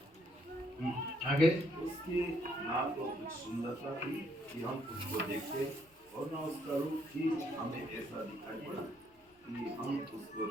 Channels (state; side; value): normal; both; correlation 0.70